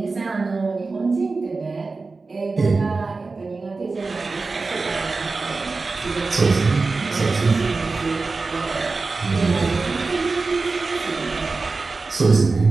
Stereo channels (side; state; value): left; quieter; 3.9 dB